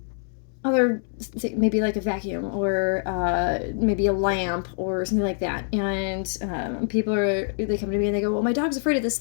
other maybe like a vacuum or maybe a lamp or something like that. And they come to me and they go, "Well, my dog's afraid of this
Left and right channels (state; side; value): silent; right; 62 dB below the other